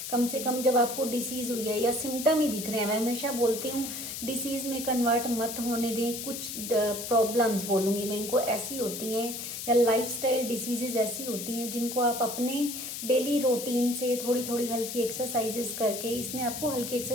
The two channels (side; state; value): left; noise; hiss, 7 dB below the sound